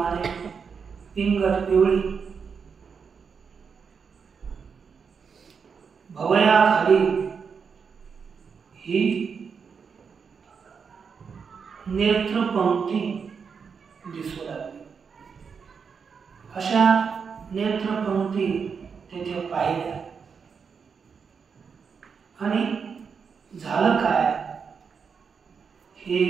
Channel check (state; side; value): quieter; left; 6.0 dB